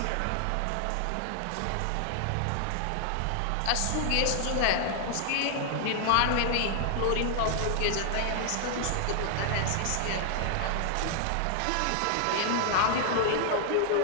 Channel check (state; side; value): different; both; correlation 0.00